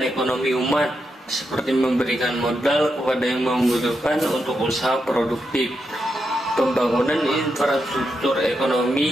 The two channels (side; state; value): both; normal; correlation 0.84